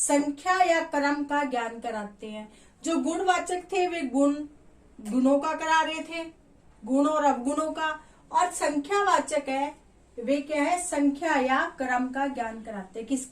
या क्रम का ज्ञान कराते हैं। जो गुणवाचक थे वे गुणों का करा रहे थे, गुण और अवगुणों का, और संख्यावाचक है वे क्या है, संख्या या क्रम का ज्ञान कराते हैं।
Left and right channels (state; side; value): identical; both; correlation 1.00